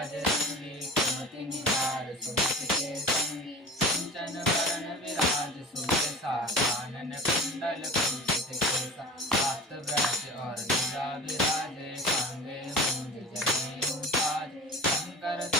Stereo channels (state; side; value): normal; both; correlation 0.36